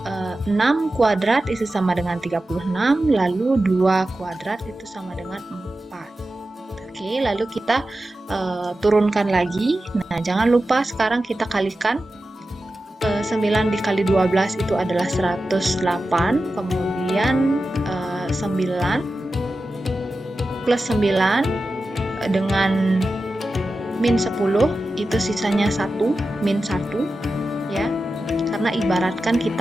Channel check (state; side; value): normal; both; correlation 0.93